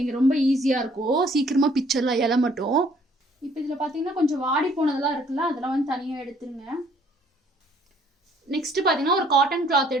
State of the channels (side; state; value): both; normal; correlation 0.61